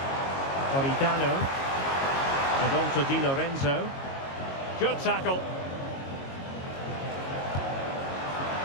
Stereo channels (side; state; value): right; late; 22 ms